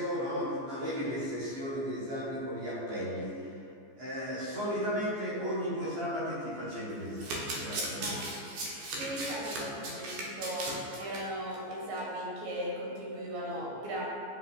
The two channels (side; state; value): left; late; 14 ms